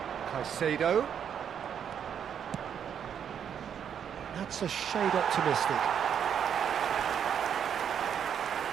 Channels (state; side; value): quieter; left; 8.3 dB